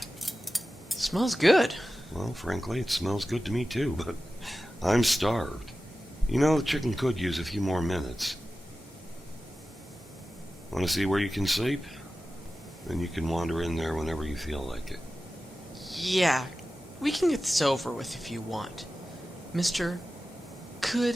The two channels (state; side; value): normal; both; correlation 0.94